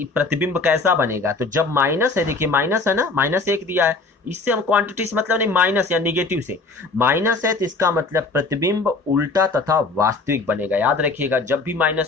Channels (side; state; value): right; quieter; 3.7 dB